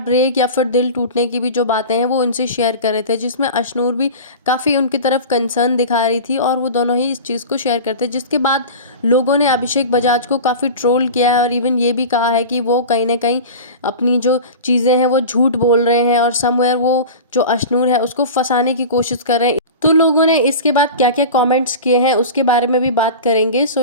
या फिर दिल टूटने की भी जो बातें हैं वो उनसे शेयर कर रहे थे, जिसमें अशनूर भी काफ़ी उनकी तरफ कंसर्न दिखा रही थी और वो दोनों ही इस चीज़ को शेयर करते, जिसके बाद लोगों ने अभिषेक बजाज को काफ़ी ट्रोल किया है और इवन ये भी कहा है कि वो कहीं ना कहीं अपनी जो चीज़ें हैं वो झूठ बोल रहे हैं और समवेयर वो जो अशनूर है उसको फंसाने की कोशिश कर रहे हैं. तो लोगों ने इसके बाद क्या क्या कमेंट्स किए हैं उसके बारे में भी बात करेंगे. So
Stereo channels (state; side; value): inverted; both; correlation -0.32